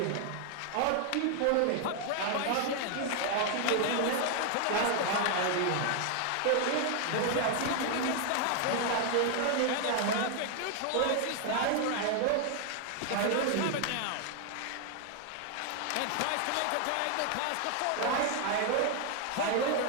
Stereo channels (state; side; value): different; both; correlation 0.00